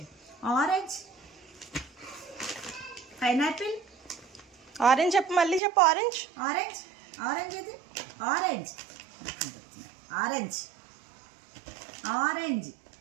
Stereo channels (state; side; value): drops out; left; at 5.6 s